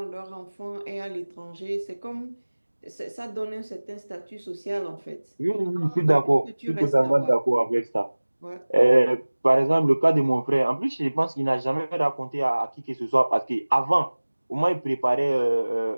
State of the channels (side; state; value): both; inverted; correlation -1.00